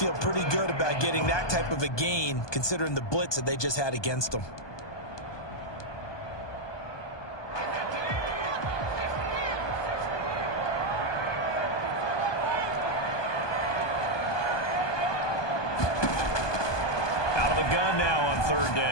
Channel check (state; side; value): late; right; 1.2 ms